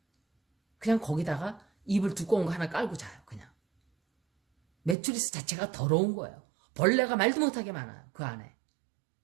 그냥 거기다가 이불 두꺼운 거 하나 깔고 자요. 그냥. 매트리스 자체가 더러운 거예요. 벌레가 말도 못하게 많아요. 그 안에.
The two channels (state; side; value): drops out; left; at 5.0 s